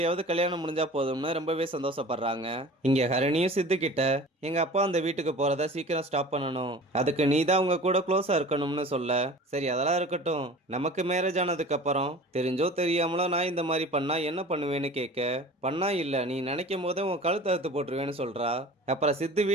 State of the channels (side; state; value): both; normal; correlation 0.41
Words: கல்யாணம் முடிஞ்சா போதும்னு ரொம்பவே சந்தோஷப்படுறாங்க. இங்க ஹரணியும் சித்து கிட்ட, எங்க அப்பா அந்த வீட்டுக்கு போறத சீக்கிரம் ஸ்டாப் பண்ணணும், அதுக்கு நீ தான் உங்க கூட க்ளோஸா இருக்கணும்னு சொல்ல, சரி அதெல்லாம் இருக்கட்டும், நமக்கு மேரேஜ் ஆனதுக்கு அப்புறம் தெரிஞ்சோ தெரியாமலோ நான் இந்த மாதிரி பண்ணா என்ன பண்ணுவேன்னு கேட்க, பண்ணா இல்ல, நீ நினைக்கும் போதே உன் கழுத்து அறுத்து போட்டுருவேன்னு சொல்றா. அப்புறம் சித்து